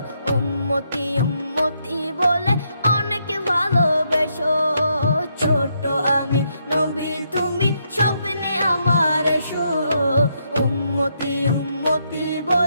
উম্মতি উম্মতি বলে অনেক ভালোবেসো। ছোট আমি নবী তুমি স্বপ্নে আমার এসো, উম্মতি উম্মতি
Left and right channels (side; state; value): both; inverted; correlation -0.77